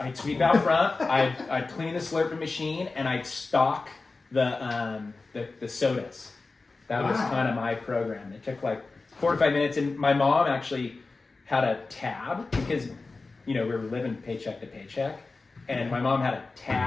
sweep out front, I'd clean the slurping machine, and I'd stock the sodas. That was kind of my program. It took like 45 minutes, and my mom actually had a tab because, we were living paycheck to paycheck, and my mom had a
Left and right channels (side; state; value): right; quieter; 3.7 dB